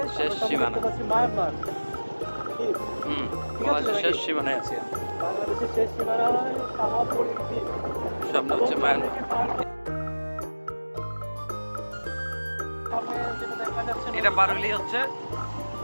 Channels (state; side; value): inverted; both; correlation -1.00